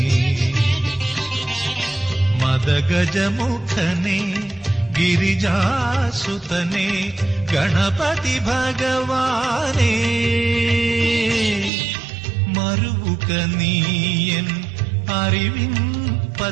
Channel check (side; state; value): left; drops out; at 11.7 s